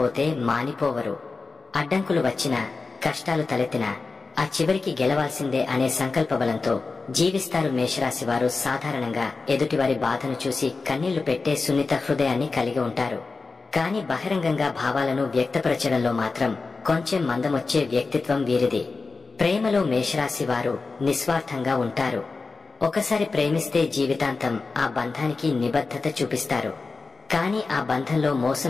మానిపోవరు. అడ్డంకులు వచ్చినా, కష్టాలు తలెత్తినా ఆ చివరికి గెలవాల్సిందే అనే సంకల్ప బలంతో జీవిస్తారు. మేషరాశి వారు సాధారణంగా ఎదుటివారి బాధను చూసి కన్నీళ్లు పెట్టే సున్నిత హృదయాన్ని కలిగి ఉంటారు. కాని బహిరంగంగా భావాలను వ్యక్తపరచడంలో మాత్రం కొంచెం మందమొచ్చే వ్యక్తిత్వం వీరిది. ప్రేమలో మేషరాశి వారు నిస్వార్థంగా ఉంటారు. ఒకసారి ప్రేమిస్తే జీవితాంతం ఆ బంధానికి నిబద్ధత చూపిస్తారు. కాని ఆ బంధంలో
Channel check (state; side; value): quieter; right; 4.0 dB